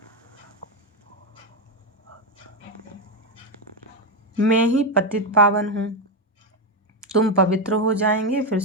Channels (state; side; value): normal; both; correlation 0.08